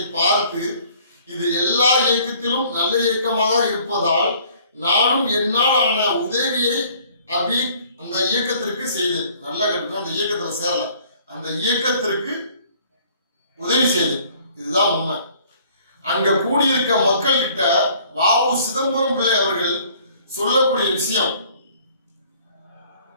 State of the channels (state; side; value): inverted; both; correlation -0.56